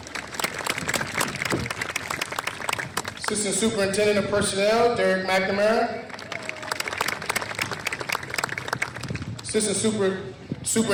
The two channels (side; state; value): both; identical; correlation 1.00